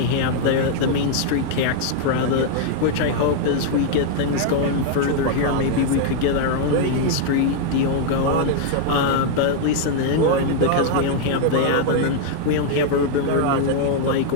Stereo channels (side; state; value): both; different; correlation 0.00